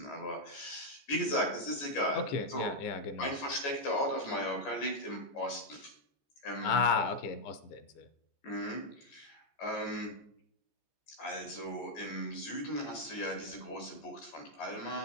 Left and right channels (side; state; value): right; late; 14 ms